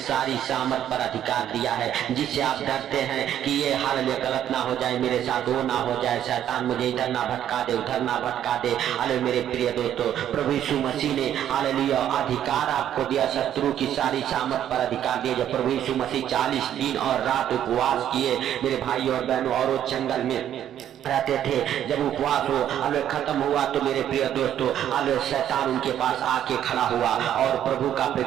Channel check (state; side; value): quieter; left; 10.6 dB